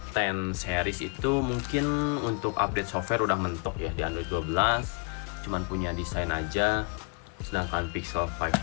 10 series itu mungkin untuk update software udah mentok ya di Android 12, cuman punya desain aja. Sedangkan Pixel 5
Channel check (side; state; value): right; quieter; 35.0 dB